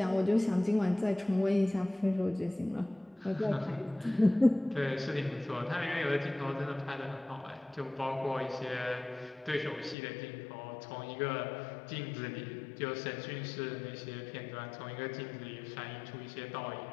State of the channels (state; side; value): drops out; right; at 10.0 s